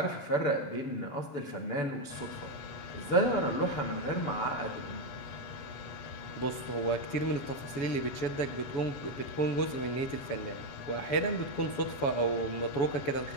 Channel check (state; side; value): late; right; 7.1 ms